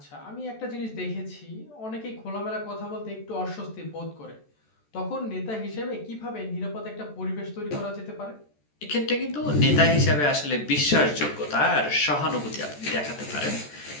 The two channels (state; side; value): late; right; 14 ms